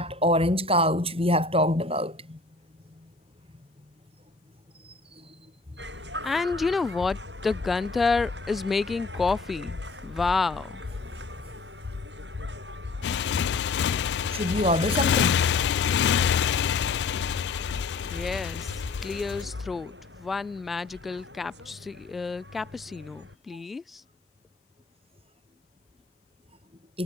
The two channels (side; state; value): right; quieter; 3.8 dB